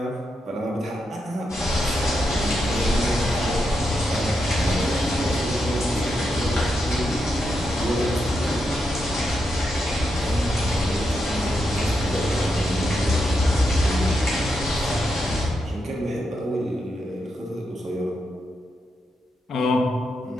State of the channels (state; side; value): normal; both; correlation 0.84